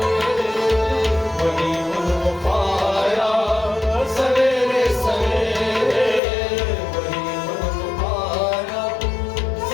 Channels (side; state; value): right; drops out; at 6.2 s